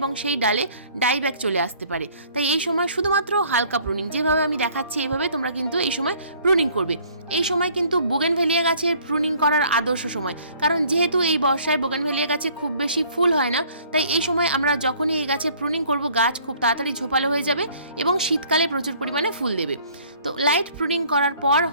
সেই ডালে ডাইব্যাক চলে আসতে পারে। তাই এই সময় শুধুমাত্র হালকা প্রুনিং, যেভাবে আমি দেখাচ্ছি এইভাবে তোমরা কিন্তু এই সময় প্রুনিং করবে। এই সময় কিন্তু বোগেনভেলিয়া গাছের প্রুনিং করার আদর্শ সময়, কারণ যেহেতু এই বর্ষায় বোগেনভেলিয়া গাছে খুব বেশি ফুল হয় না, তাই এই সময় আমরা যখনই এই গাছের প্রুনিং করব গাছ খুব তাড়াতাড়ি ঝোপালো হয়ে যাবে এবং শীতকালে প্রচুর পরিমাণে ফুল দেবে। তো লাইট প্রুনিং করার পর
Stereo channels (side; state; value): both; inverted; correlation -0.57